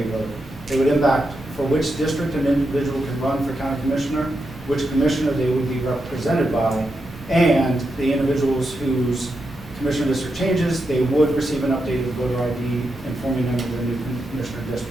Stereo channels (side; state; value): both; normal; correlation 0.86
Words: vote. It would impact for which district an individual can run for county commissioner, which commissioner they would be represented by, and the individuals whose commissioner district changes, they would receive an updated voter ID informing them of their new commissioner